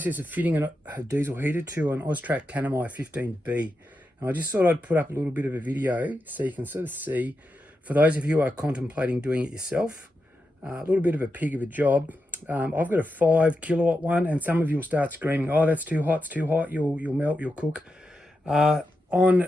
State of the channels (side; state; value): both; normal; correlation 0.88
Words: of fitting a diesel heater to an Austrac Tanami 15B. And I just thought I'd put up a little bit of a video so you can sort of see, for those of you who are contemplating doing it yourself, a little bit of a pig of a job. I've got a 5 kilowatt one, and some of you will start screaming, oh, that's too hot, it's too hot, you'll melt, you'll cook.